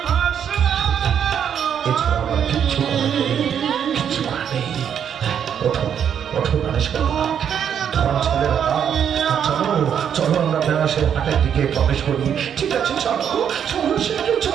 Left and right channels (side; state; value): left; quieter; 8.5 dB